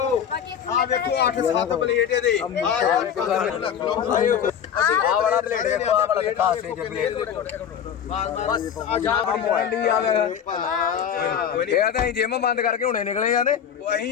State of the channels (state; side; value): quieter; right; 8.5 dB